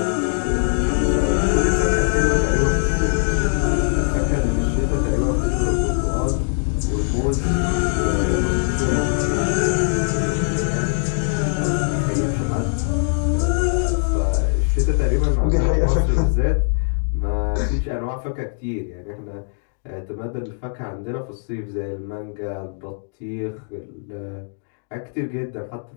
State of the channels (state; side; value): silent; right; digital silence